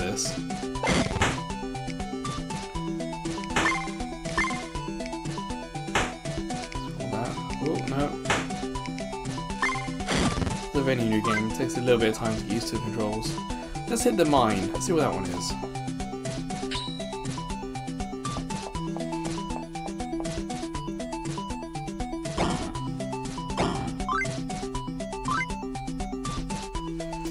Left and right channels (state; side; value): identical; both; correlation 1.00